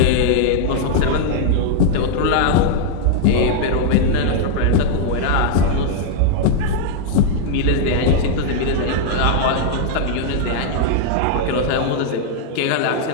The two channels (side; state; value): both; different; correlation -0.01